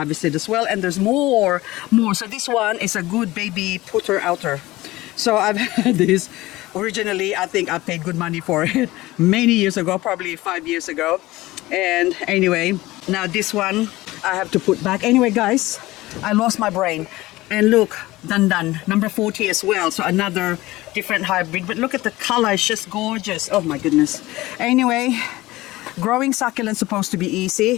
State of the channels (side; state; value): right; quieter; 18.6 dB